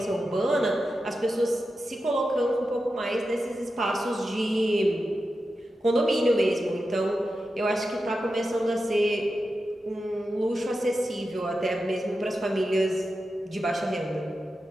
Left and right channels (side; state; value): both; normal; correlation 0.91